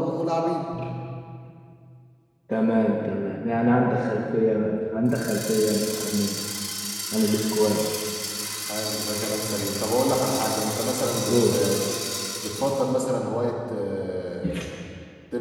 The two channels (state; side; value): identical; both; correlation 1.00